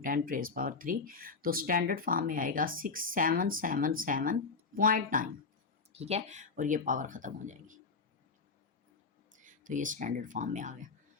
तो स्टैंडर्ड फॉर्म में आएगा 6777.9। ठीक है, और ये पावर ख़त्म हो जाएगी। तो ये स्टैंडर्ड फॉर्म में आ गया।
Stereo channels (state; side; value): quieter; right; 4.5 dB